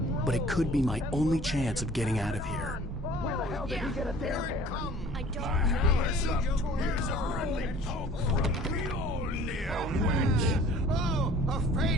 but it could be my only chance of getting out of here. Where the hell did he get a damn hammer? I don't know. Here's a friendly poke from Mjolnir. Oh,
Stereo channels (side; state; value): both; normal; correlation 0.49